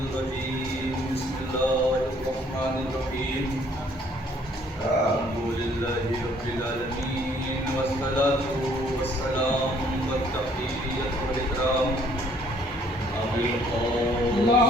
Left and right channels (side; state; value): both; normal; correlation 0.62